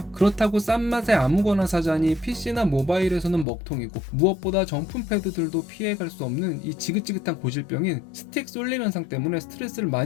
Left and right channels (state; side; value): drops out; right; at 3.5 s